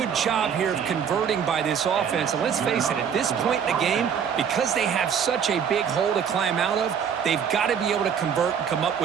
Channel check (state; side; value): quieter; left; 7.6 dB